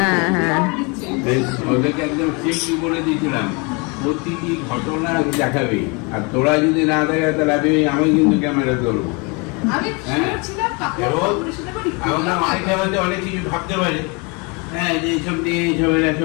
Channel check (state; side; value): quieter; right; 30.3 dB